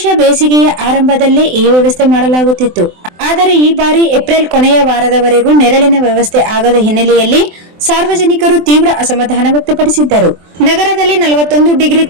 ಬೇಸಿಗೆಯ ಆರಂಭದಲ್ಲೇ ಈ ವ್ಯವಸ್ಥೆ ಮಾಡಲಾಗುತ್ತಿತ್ತು. ಆದರೆ ಈ ಬಾರಿ ಏಪ್ರಿಲ್ ಕೊನೆಯ ವಾರದವರೆಗೂ ನೆರಳಿನ ವ್ಯವಸ್ಥೆ ಆಗದ ಹಿನ್ನೆಲೆಯಲ್ಲಿ ಸಾರ್ವಜನಿಕರು ತೀವ್ರ ಅಸಮಾಧಾನ ವ್ಯಕ್ತಪಡಿಸಿದ್ದರು. ನಗರದಲ್ಲಿ 41 ಡಿಗ್ರಿ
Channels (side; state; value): left; late; 24 ms